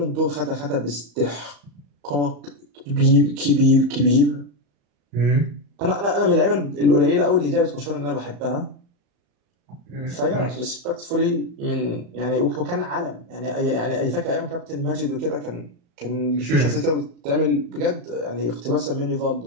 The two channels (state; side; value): late; left; 35 ms